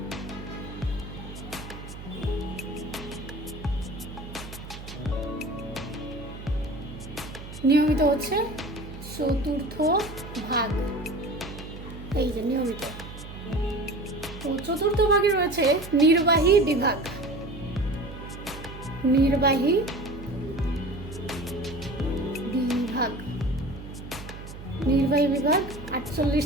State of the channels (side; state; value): right; noise; hum, 12 dB below the sound